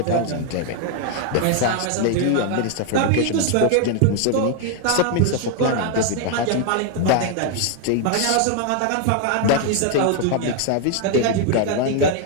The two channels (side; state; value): both; different; correlation 0.00